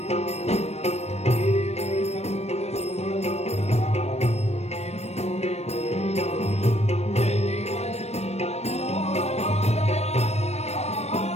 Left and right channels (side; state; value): right; late; 0.31 ms